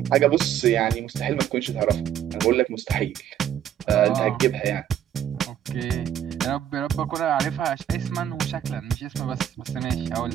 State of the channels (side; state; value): left; quieter; 10.2 dB